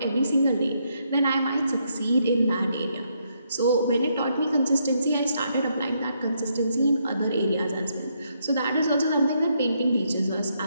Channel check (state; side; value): inverted; both; correlation -0.76